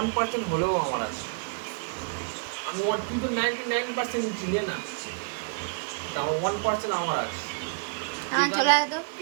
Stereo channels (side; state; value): left; quieter; 34.9 dB